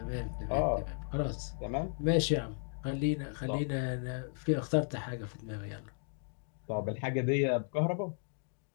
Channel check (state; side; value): silent; right; 54 dB below the other